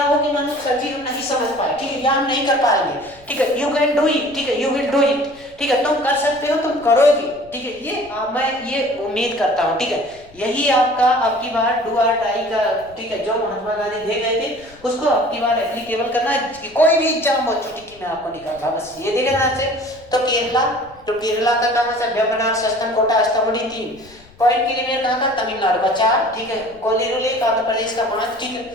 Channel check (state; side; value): noise; left; rumble, 26 dB below the sound